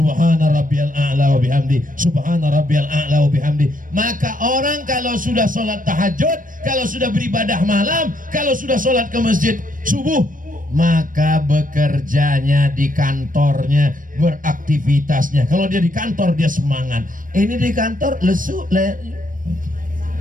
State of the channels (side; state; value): left; late; 0.39 ms